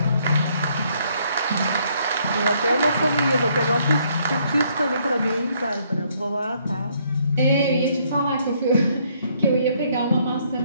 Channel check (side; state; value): both; inverted; correlation -0.68